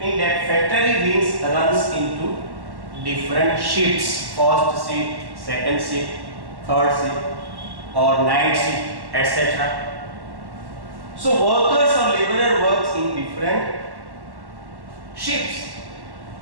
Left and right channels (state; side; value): late; left; 1.1 ms